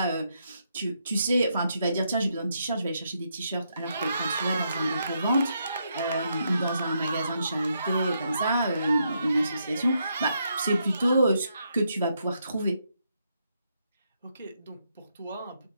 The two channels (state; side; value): inverted; both; correlation -0.78